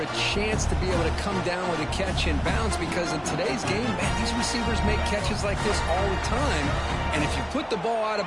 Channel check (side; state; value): both; identical; correlation 1.00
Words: a chance to be able to come down with a catch and bounce because in today's game, man, these receivers make catches like this all the time. And if you put the ball out